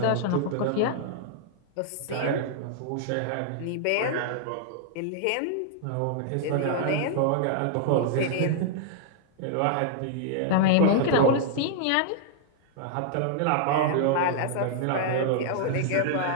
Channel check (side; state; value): both; different; correlation -0.01